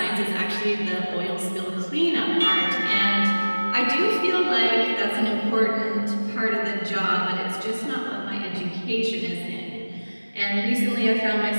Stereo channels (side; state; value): both; inverted; correlation -1.00